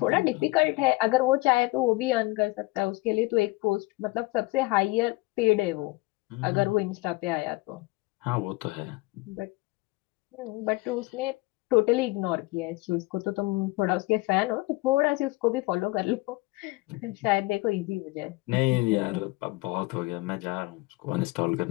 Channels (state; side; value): quieter; right; 22.6 dB